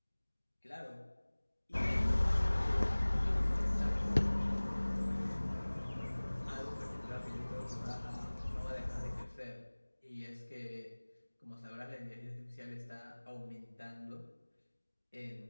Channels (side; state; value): both; inverted; correlation -1.00